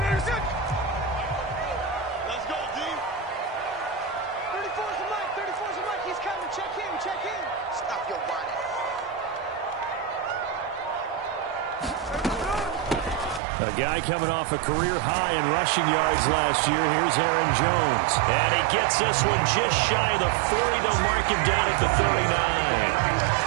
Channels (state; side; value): drops out; left; at 13.4 s